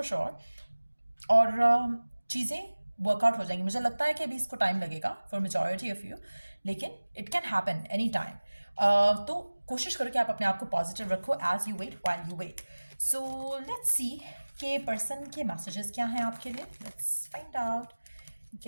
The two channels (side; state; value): both; inverted; correlation -1.00